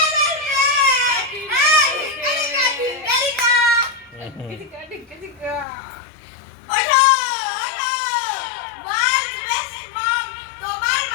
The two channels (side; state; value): right; drops out; at 5.7 s